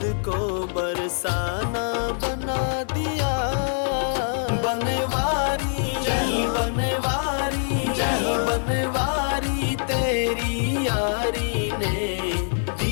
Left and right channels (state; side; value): silent; right; 59 dB below the other